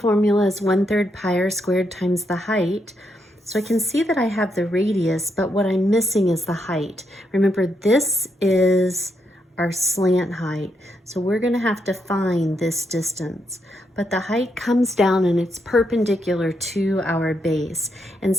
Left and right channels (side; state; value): both; normal; correlation 0.79